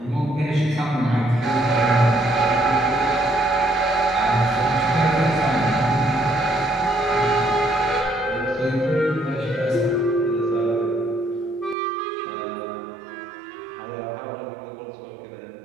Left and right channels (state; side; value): drops out; left; at 11.8 s